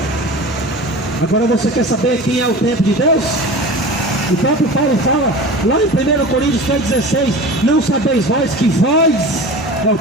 Agora você quer saber quem é o templo de Deus? O próprio Paulo fala, lá em 1 Coríntios 3,16, não sabeis vós que vós é o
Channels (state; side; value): normal; both; correlation 0.35